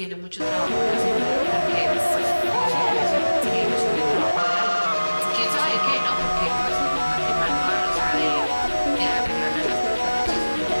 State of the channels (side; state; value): both; inverted; correlation -1.00